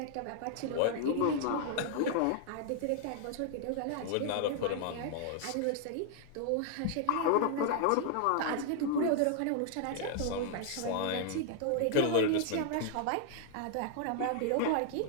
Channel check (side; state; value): both; different; correlation 0.00